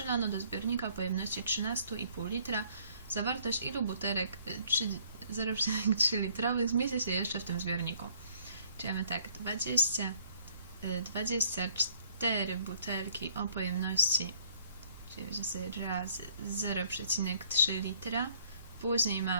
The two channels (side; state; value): both; inverted; correlation -0.61